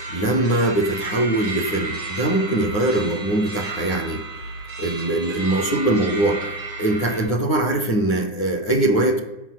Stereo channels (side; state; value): right; late; 9.8 ms